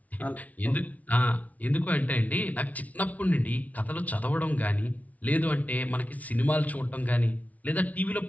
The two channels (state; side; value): late; right; 0.071 ms